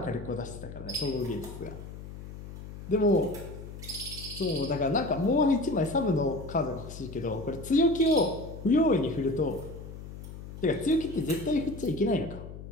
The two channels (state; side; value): noise; left; hum, 12 dB below the sound